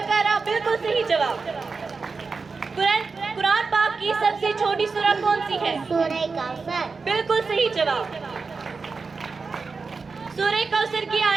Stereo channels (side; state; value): left; quieter; 4.5 dB